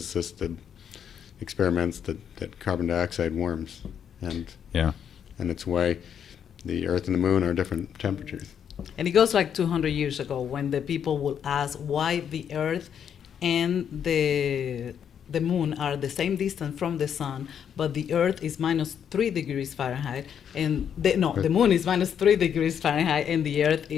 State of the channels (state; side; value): quieter; right; 8.4 dB